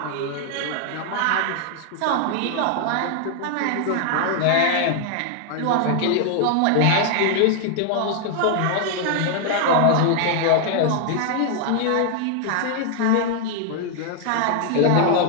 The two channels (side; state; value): both; different; correlation 0.00